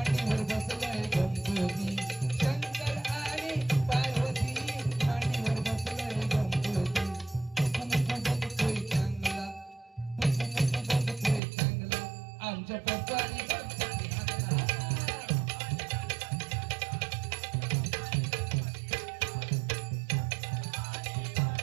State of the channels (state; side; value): drops out; left; at 11.4 s